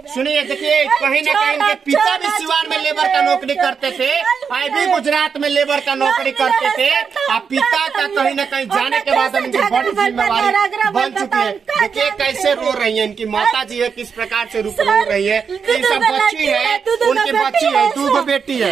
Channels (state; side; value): quieter; left; 6.2 dB